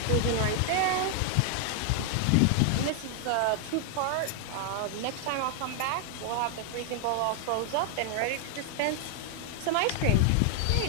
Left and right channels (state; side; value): different; both; correlation 0.00